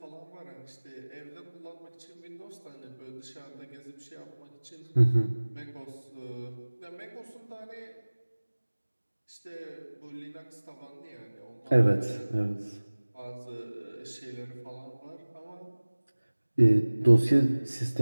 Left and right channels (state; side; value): inverted; both; correlation -1.00